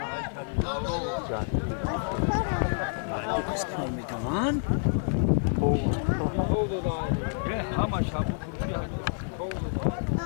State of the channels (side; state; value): right; silent; digital silence